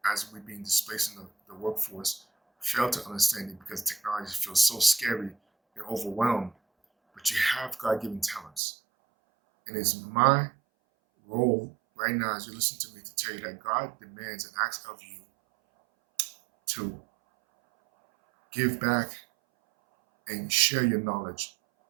as we're being displaced in the workforce, fail to understand it because technology feels so scary and overwhelmed. But you have God-given talents. And it's my role right now as you listen to me to tell you that God demands and asks of you to give back and share your knowledge.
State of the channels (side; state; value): left; drops out; at 8.6 s